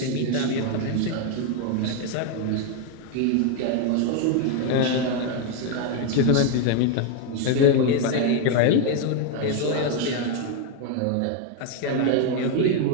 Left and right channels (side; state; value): both; different; correlation 0.01